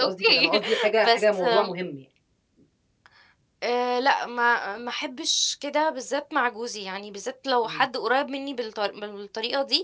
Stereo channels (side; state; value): both; identical; correlation 1.00